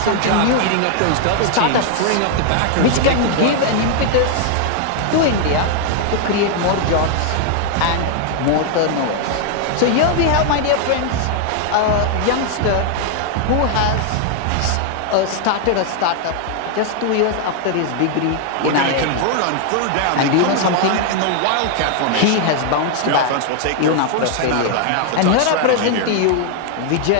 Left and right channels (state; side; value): different; both; correlation 0.00